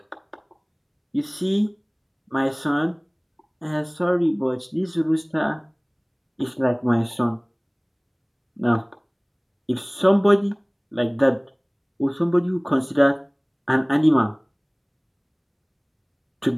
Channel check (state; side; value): identical; both; correlation 1.00